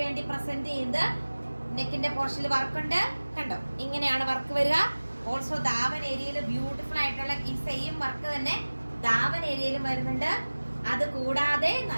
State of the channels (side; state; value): both; inverted; correlation -1.00